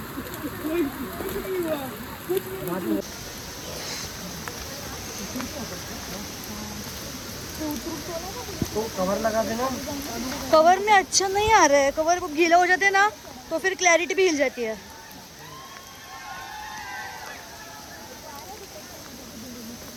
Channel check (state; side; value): identical; both; correlation 1.00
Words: कवर लगा देना. कवर में अच्छा नहीं आ रहा है. कवर गीला हो जाते हैं ना तो फिर क्लैरिटी भी हिल जाती है.